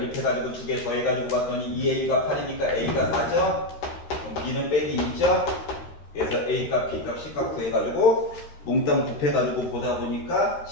두 개 더해가지고 봤더니 2A가 8이니까 A가 4죠? 그럼 B는 빼기 2죠? 그래서 A값, B값, C값 구해가지고 몽땅 곱해가지고 보다 보니까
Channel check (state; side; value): late; right; 13 ms